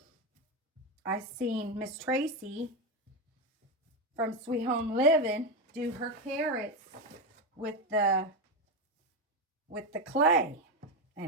I seen Miss Tracy from Sweet Home Living do her carrots with the clay.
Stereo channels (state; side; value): normal; both; correlation 0.11